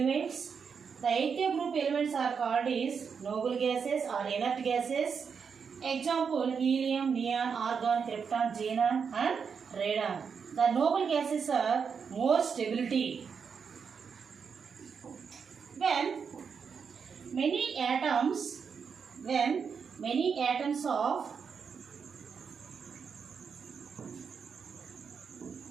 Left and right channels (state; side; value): quieter; left; 6.2 dB